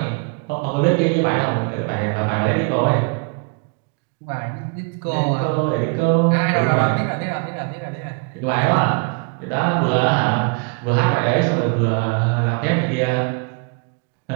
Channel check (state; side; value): quieter; left; 33.0 dB